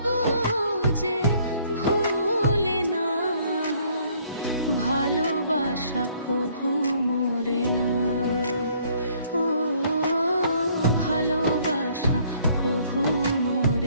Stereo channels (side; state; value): both; inverted; correlation -0.62